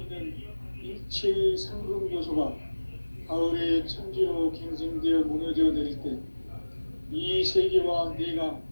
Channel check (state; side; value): inverted; both; correlation -1.00